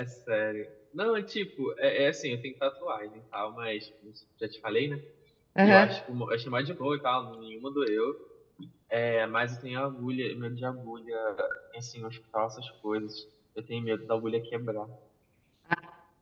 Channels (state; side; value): identical; both; correlation 1.00